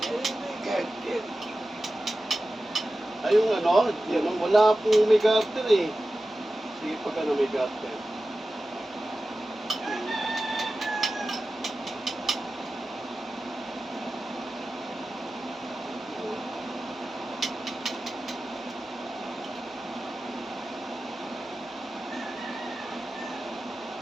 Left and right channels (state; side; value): normal; both; correlation 0.94